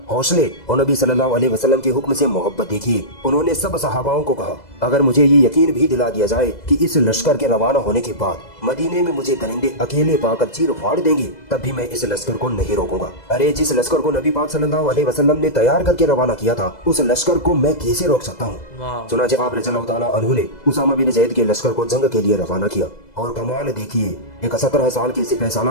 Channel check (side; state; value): right; late; 2.0 ms